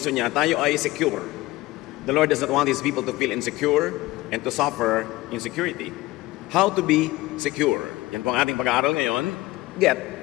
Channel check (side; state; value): right; quieter; 19.2 dB